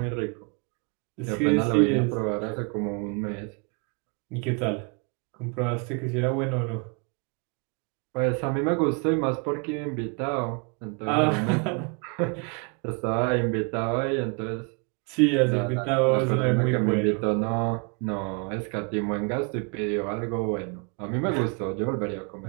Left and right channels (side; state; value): left; quieter; 34.5 dB